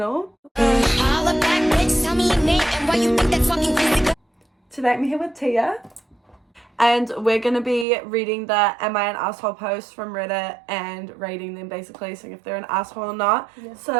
Today I'm here with Tia. And we're going to be reading the Am I an Asshole posts from Reddit and rating them basically, seeing if they're an asshole or not. Yeah.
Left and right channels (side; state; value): left; drops out; at 7.9 s